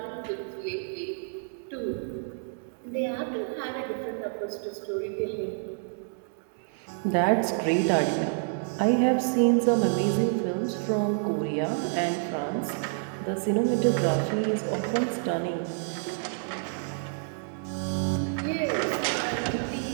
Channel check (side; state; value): left; silent; 59 dB below the other